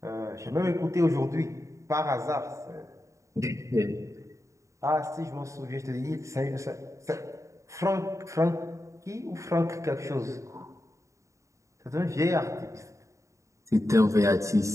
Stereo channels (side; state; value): left; late; 0.15 ms